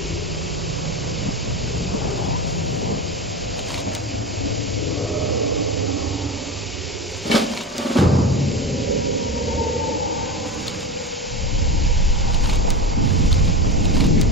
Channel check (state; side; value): normal; both; correlation 0.23